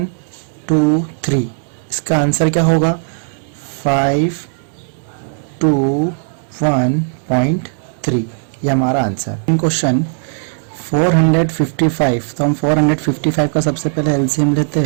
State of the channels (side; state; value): left; silent; 68 dB below the other